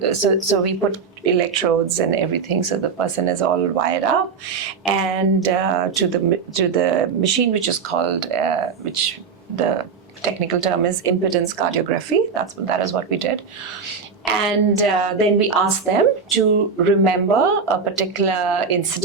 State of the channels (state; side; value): quieter; left; 5.5 dB